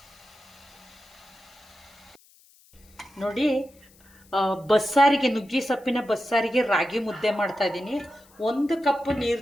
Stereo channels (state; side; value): noise; left; hiss, 28 dB below the sound